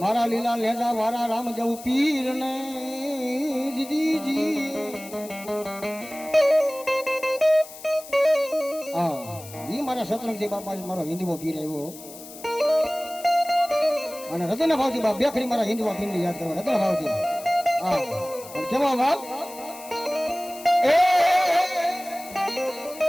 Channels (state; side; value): noise; left; hiss, 16 dB below the sound